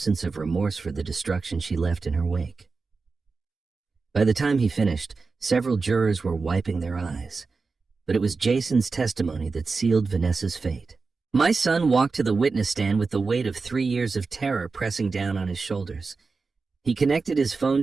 of remorse for the destruction she left in her wake. By the time he finished, several jurors were wiping their eyes, but it was Jason's testimony that sealed Vanessa's fate. My son walked to the witness stand with the weight of 3 years of terror pressing down on his shoulders. He connected his phone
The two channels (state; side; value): quieter; left; 4.3 dB